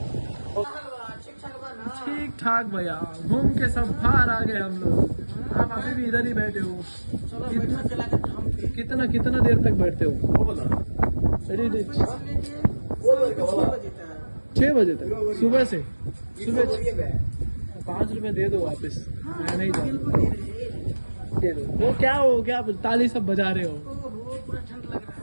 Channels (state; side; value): inverted; both; correlation -1.00